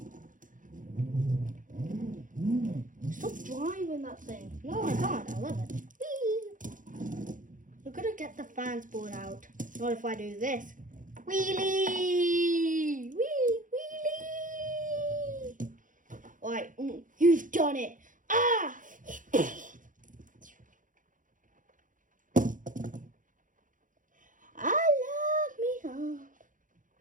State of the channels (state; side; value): late; left; 0.38 ms